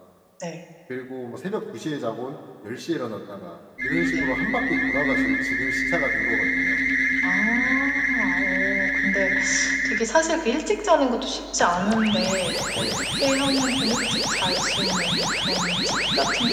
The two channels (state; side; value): identical; both; correlation 1.00